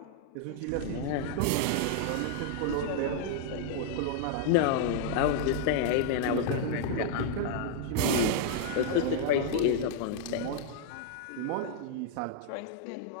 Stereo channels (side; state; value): both; different; correlation -0.01